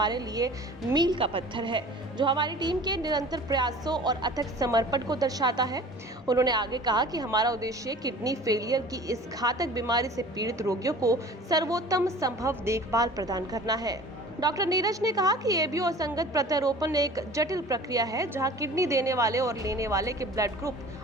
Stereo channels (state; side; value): normal; both; correlation 0.44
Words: लिए मील का पत्थर है, जो हमारी टीम के निरंतर प्रयासों और अथक समर्पण को दर्शाता है। उन्होंने आगे कहा कि हमारा उद्देश्य किडनी फेलियर की इस घातक बीमारी से पीड़ित रोगियों को सर्वोत्तम संभव देखभाल प्रदान करना है। डॉक्टर नीरज ने कहा कि एबीओ असंगत प्रत्यारोपण एक जटिल प्रक्रिया है, जहां किडनी देने वाले और लेने वाले के ब्लड ग्रुप